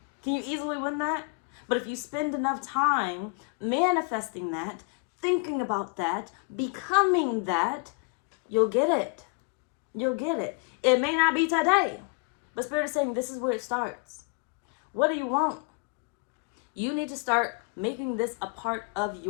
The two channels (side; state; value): right; quieter; 35.6 dB